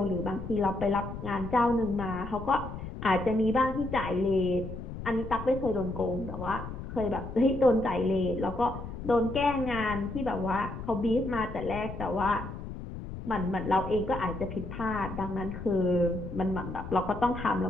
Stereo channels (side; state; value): left; noise; rumble, 9 dB below the sound